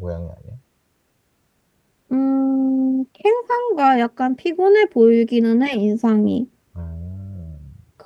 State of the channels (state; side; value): identical; both; correlation 1.00